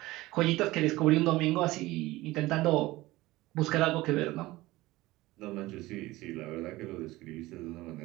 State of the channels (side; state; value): left; quieter; 18.9 dB